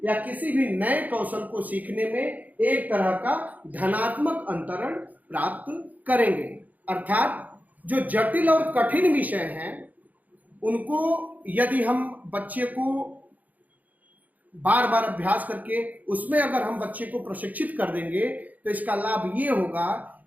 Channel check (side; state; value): left; late; 0.079 ms